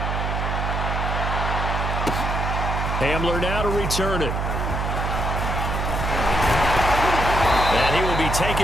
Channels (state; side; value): noise; right; hum, 1 dB below the sound